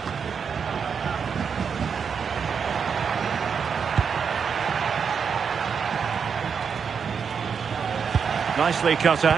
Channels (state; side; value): quieter; left; 6.5 dB